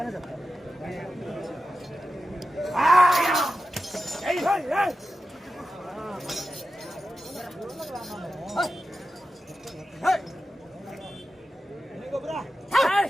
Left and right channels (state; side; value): normal; both; correlation 0.92